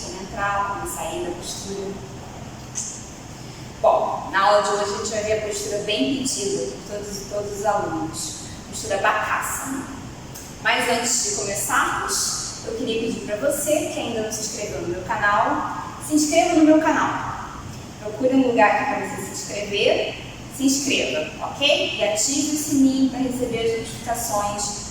como entrar, como sair da postura. Bom, na aula de hoje a gente vai ver a postura bem pedida por todos os alunos, postura Bakasana. Mas antes de começarmos, eu queria pedir para você que ainda não se inscreveu no meu canal, se inscreva no meu canal. Procure um lugar aqui para você se inscrever, se inscreva, ok? E ative o sininho para receber as notificações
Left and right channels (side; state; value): both; identical; correlation 1.00